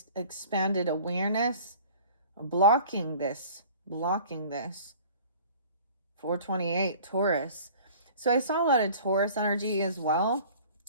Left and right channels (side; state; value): both; inverted; correlation -0.46